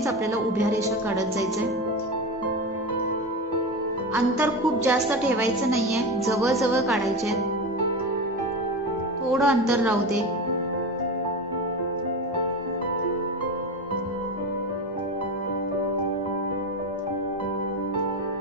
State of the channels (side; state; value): both; normal; correlation 0.22